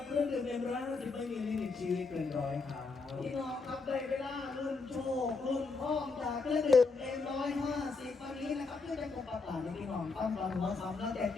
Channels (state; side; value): quieter; right; 4.2 dB